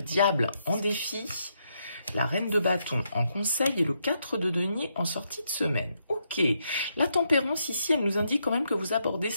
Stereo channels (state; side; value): inverted; both; correlation -0.79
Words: en défi, la reine de bâton en conseil et le 4 de denier en sortie de semaine. Ok, la tempérance ici, elle nous indique quand même que vous abordez